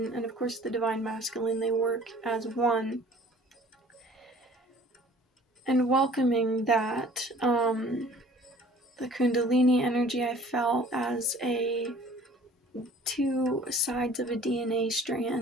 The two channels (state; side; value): normal; both; correlation 0.50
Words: and of course the divine masculine. They work as one, and welcoming that, the Kundalini energy I felt as two sides of a DNA